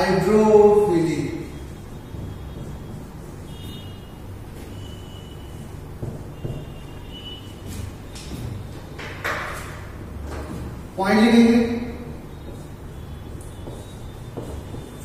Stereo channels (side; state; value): both; identical; correlation 1.00